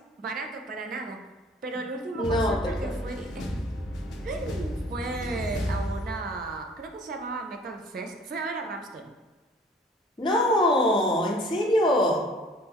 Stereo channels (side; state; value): both; normal; correlation 0.52